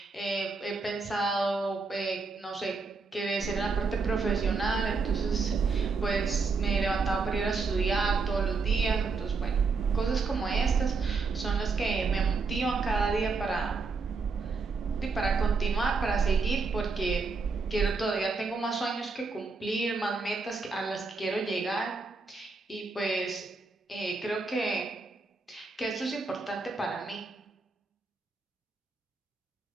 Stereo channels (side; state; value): left; quieter; 4.4 dB